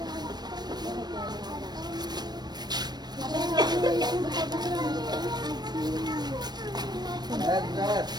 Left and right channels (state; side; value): late; left; 0.20 ms